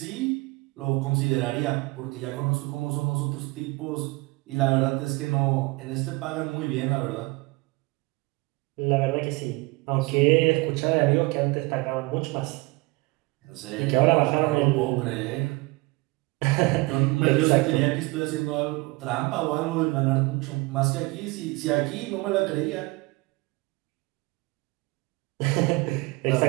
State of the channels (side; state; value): left; quieter; 24.0 dB